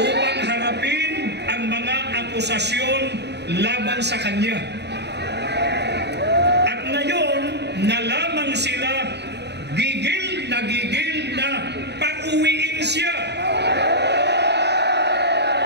harapin ang mga akusasyon laban sa kanya. At ngayon, na lamang sila gigil na pauwiin siya.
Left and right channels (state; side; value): late; left; 0.49 ms